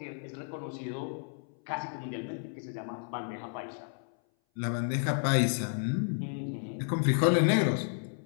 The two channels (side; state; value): right; silent; 57 dB below the other